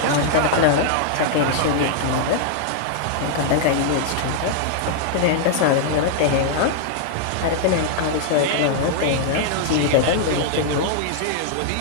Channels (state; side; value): different; both; correlation 0.00